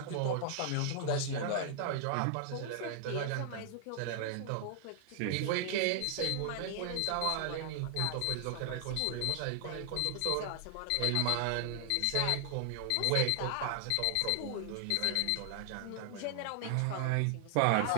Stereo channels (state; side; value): different; both; correlation 0.00